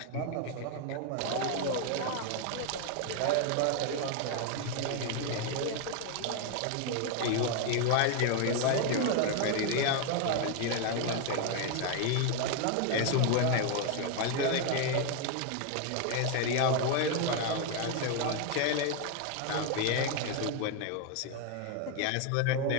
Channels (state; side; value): different; both; correlation 0.01